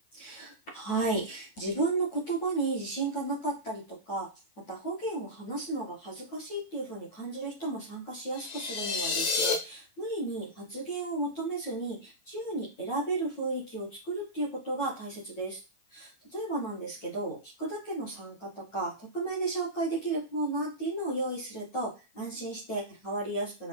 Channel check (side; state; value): right; late; 9.2 ms